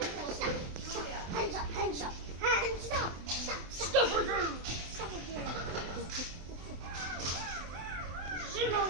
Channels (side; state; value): left; late; 24 ms